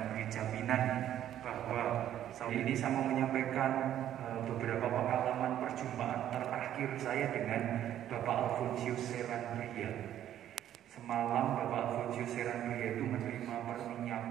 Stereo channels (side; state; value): left; quieter; 11.4 dB